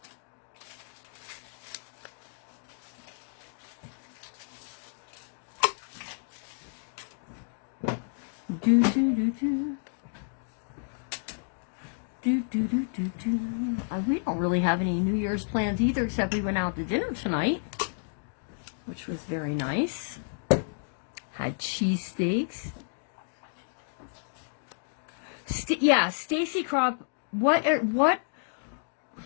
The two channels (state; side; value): silent; right; digital silence